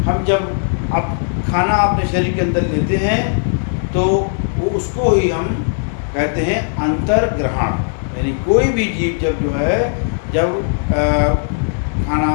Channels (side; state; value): right; silent; digital silence